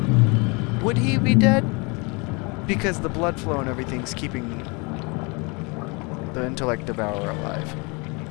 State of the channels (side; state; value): right; quieter; 29.8 dB